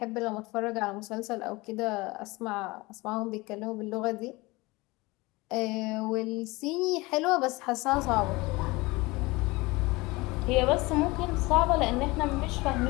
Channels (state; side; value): quieter; right; 22.8 dB